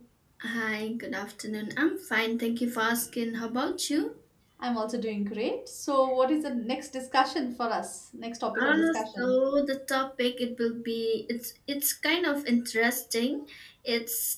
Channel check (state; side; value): identical; both; correlation 1.00